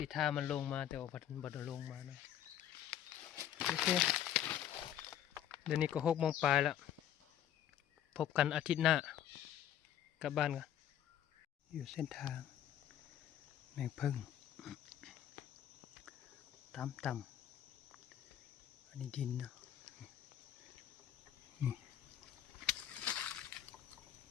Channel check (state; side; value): quieter; right; 10.9 dB